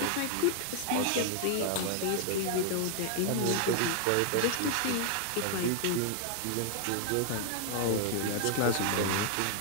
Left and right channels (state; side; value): different; both; correlation 0.00